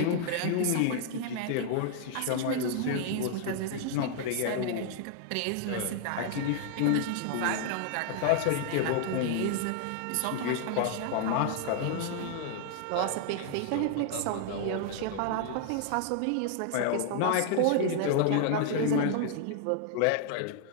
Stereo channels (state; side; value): different; both; correlation 0.00